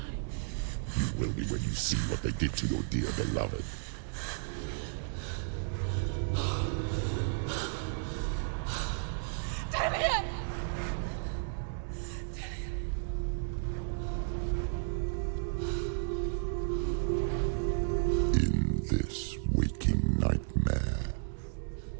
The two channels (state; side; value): silent; left; digital silence